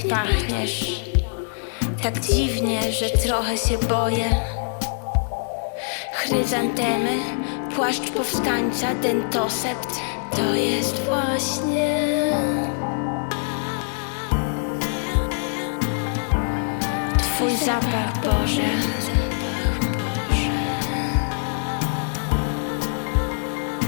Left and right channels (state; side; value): silent; right; digital silence